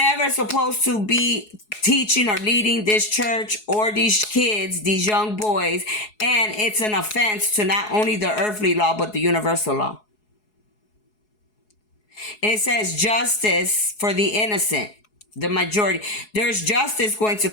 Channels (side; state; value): right; late; 4.7 ms